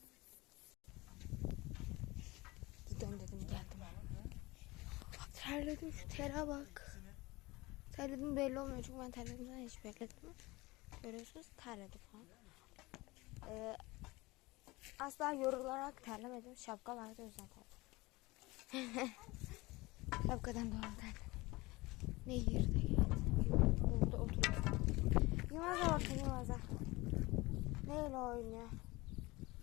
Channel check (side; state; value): right; quieter; 21.8 dB